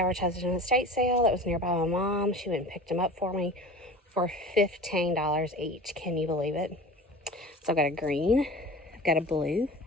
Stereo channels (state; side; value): normal; both; correlation 0.38